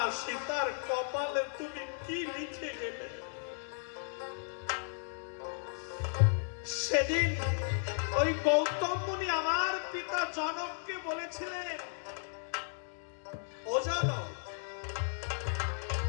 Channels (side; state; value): right; silent; digital silence